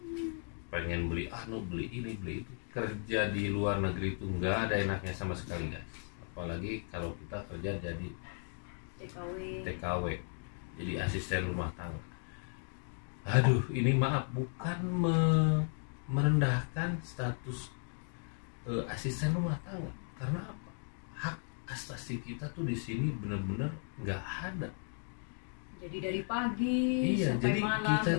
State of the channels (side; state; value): right; silent; 54 dB below the other